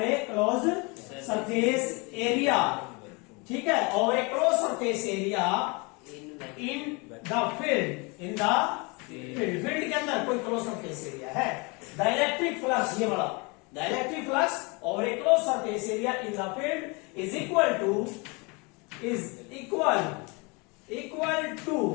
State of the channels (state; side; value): quieter; right; 29.1 dB